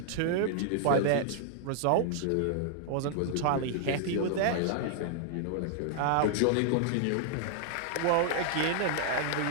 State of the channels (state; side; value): different; both; correlation -0.01